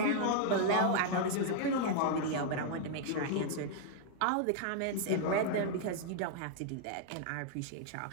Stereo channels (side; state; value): both; different; correlation -0.01